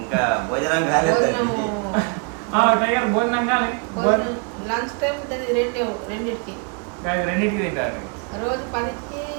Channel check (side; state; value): left; quieter; 37.9 dB